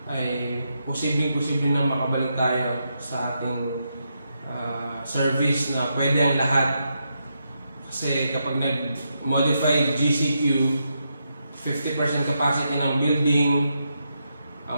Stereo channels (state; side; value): inverted; both; correlation -0.83